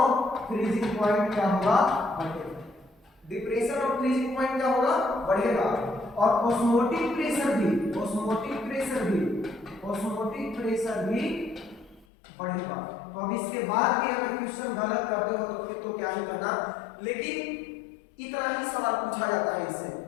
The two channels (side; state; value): right; drops out; at 12.1 s